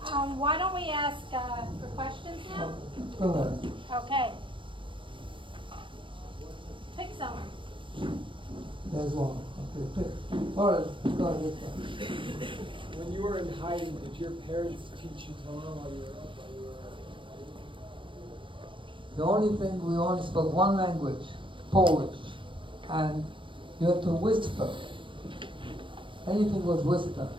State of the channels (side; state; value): left; late; 0.24 ms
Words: Why don't we ask for questions now? Go ahead. Okay. Pick someone. There's one. Okay, pick. All right, go ahead. When you were in hiding, did your parents teach you Torah while you were up? The only thing, we only spoke one language, Polish, and you had to whisper. Anything was whisper,